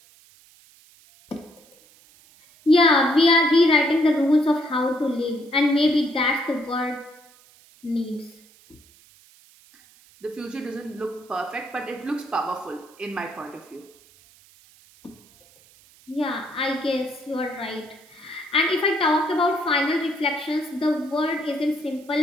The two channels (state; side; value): noise; right; hiss, 27 dB below the sound